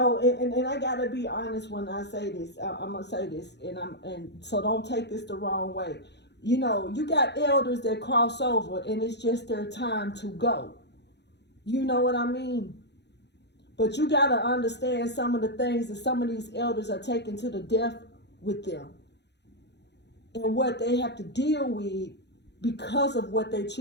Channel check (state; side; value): late; right; 0.50 ms